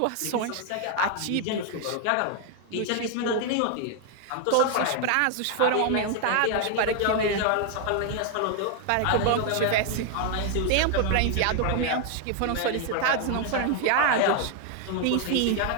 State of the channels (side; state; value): both; different; correlation 0.00